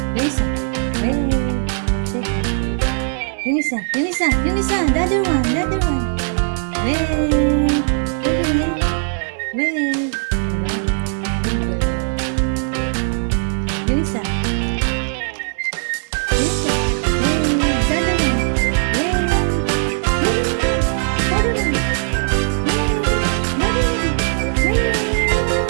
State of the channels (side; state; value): left; silent; 56 dB below the other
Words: Yunisa. Wave. Shake hands. Yunisa. Yunisa. Yunisa. The other one. The other one. Wave. Very good. Wave. Diba? Good girl. Yunisa.